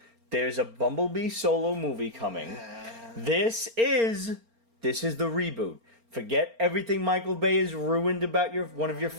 There's a Bumblebee solo movie coming. This is the reboot. Forget everything Michael Bay has ruined about one of your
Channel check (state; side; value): late; left; 4.4 ms